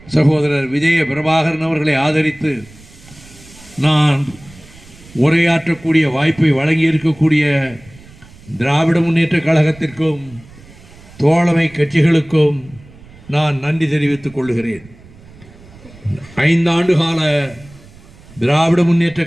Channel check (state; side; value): noise; right; rumble, 22 dB below the sound